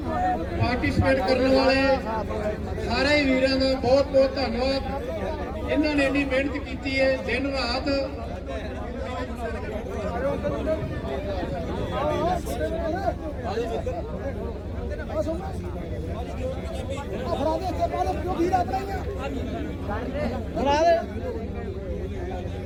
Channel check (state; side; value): identical; both; correlation 1.00